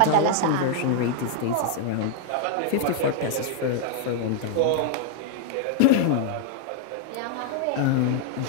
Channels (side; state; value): both; different; correlation 0.00